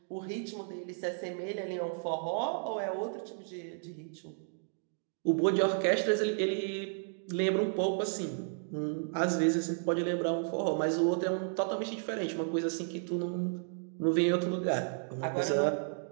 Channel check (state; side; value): silent; left; digital silence